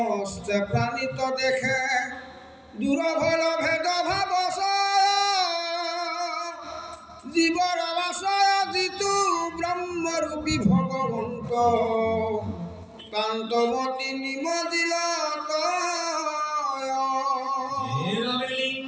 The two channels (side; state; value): both; identical; correlation 1.00